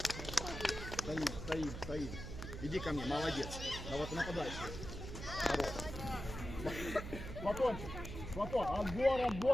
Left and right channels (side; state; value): right; noise; hum, 8 dB below the sound